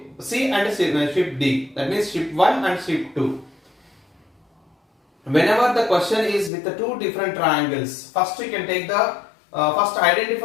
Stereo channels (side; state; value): right; drops out; at 6.5 s